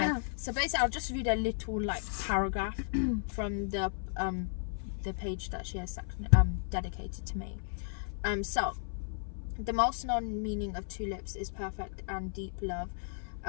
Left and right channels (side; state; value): right; silent; 55 dB below the other